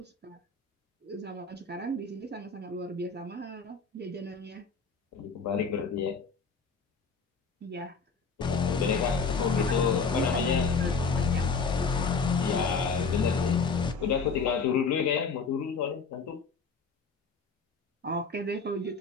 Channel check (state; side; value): quieter; right; 4.8 dB